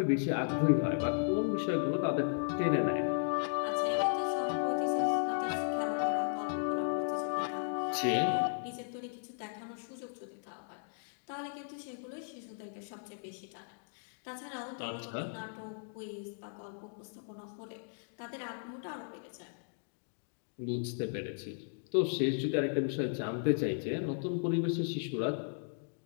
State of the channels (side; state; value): right; silent; digital silence